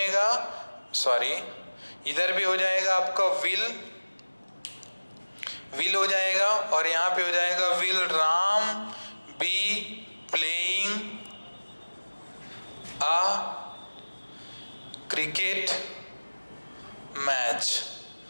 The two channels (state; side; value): inverted; both; correlation -1.00